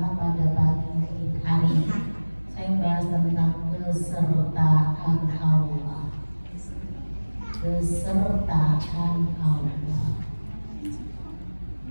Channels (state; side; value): inverted; both; correlation -1.00